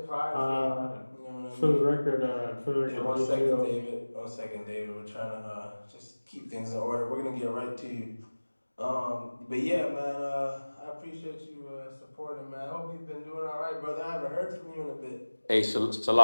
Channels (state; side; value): inverted; both; correlation -1.00